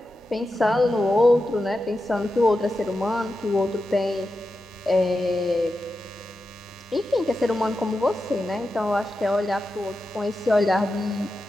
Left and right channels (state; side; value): normal; both; correlation 0.90